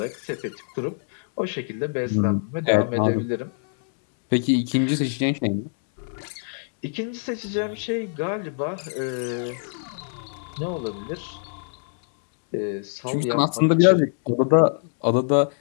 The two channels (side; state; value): right; silent; digital silence